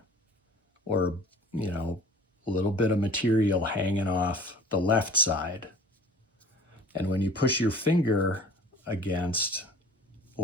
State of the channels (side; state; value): both; normal; correlation 0.46